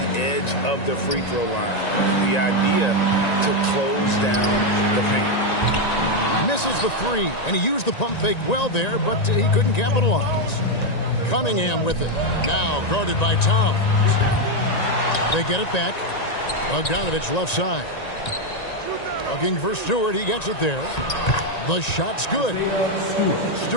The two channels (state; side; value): late; right; 1.9 ms